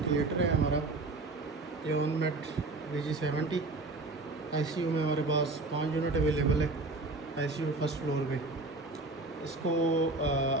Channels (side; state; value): left; quieter; 3.2 dB